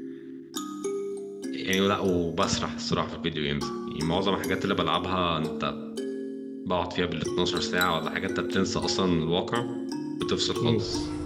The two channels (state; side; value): identical; both; correlation 1.00